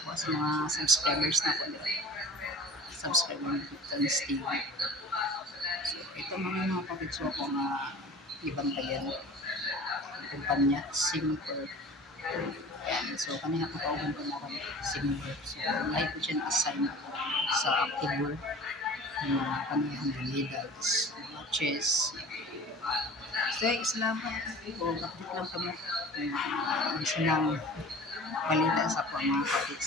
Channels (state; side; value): normal; both; correlation 0.42